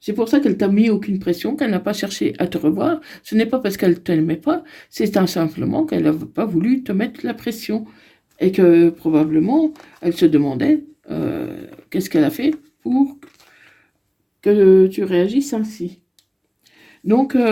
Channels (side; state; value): both; identical; correlation 1.00